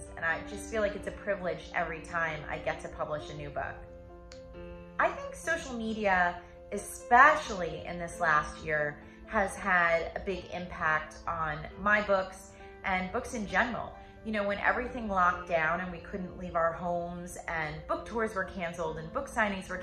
and I just feel like it's a privilege every time I get to publish a new book. I think social media, especially in this last year, has had a big impact on my books and books in general. You know, when everything locked down and we couldn't leave our homes and book tours were canceled and book signings were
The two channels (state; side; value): identical; both; correlation 1.00